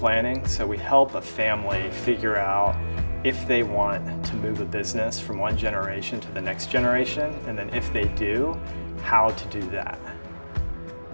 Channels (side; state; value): both; inverted; correlation -1.00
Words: So we help a family figure out if they want to move a business from one generation to the next generation, and then if they do, how to do that.